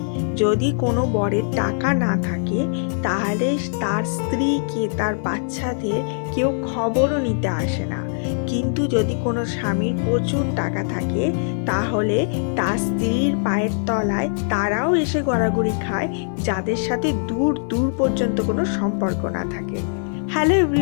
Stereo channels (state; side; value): silent; right; 64 dB below the other